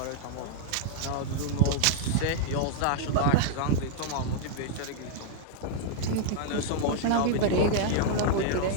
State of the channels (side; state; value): both; different; correlation -0.02